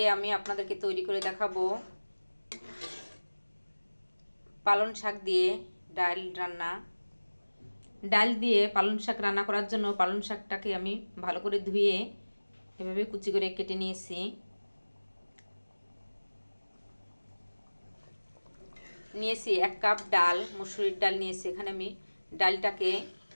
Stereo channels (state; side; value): inverted; both; correlation -1.00